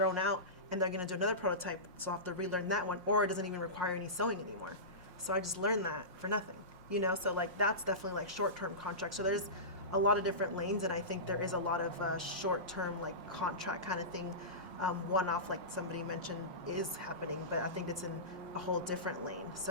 out, and they're going to do another prototype, so I'll have to relearn that one, or it doesn't even require any sewing anymore. So I just learned that for nothing, you know? So like that's definitely like short-term contracts. So there's a lot of different lanes, and I think there is a lot of short-term like contract kind of thing. One-off, like somebody mentioned, is happening, but I think it's in a whole different lane.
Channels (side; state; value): left; late; 5.6 ms